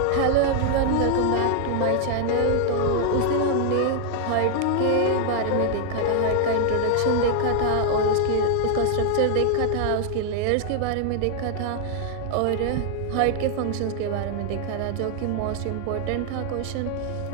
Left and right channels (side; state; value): both; different; correlation 0.00